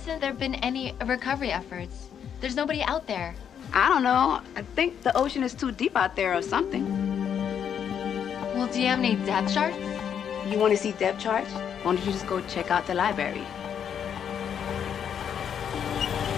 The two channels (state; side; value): quieter; right; 8.3 dB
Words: there been any recovery efforts? There's nobody out there. I don't know. I think the ocean is too deep out there or something. Well, do you have any depth charts? You want to see depth charts? Why don't you just go check out the library?